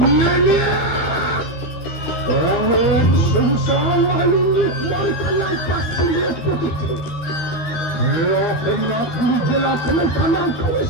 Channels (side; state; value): right; late; 13 ms